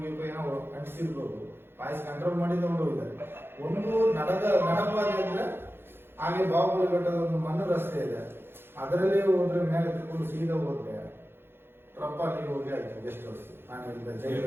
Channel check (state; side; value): late; left; 0.11 ms